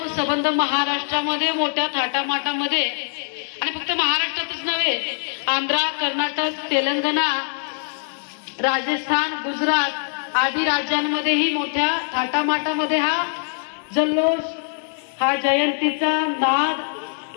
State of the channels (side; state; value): right; silent; digital silence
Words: संबंध महाराष्ट्रामध्ये मोठ्या थाटामाटामध्ये आणि फक्त महाराष्ट्रातच नव्हे, आंध्र, कर्नाटक, तेलंगणा, राजस्थान, गुजरात आदी राज्यांमध्येही मोठ्या थाटामाटामध्ये हा जल्लोष, हा जयंतीचा नाद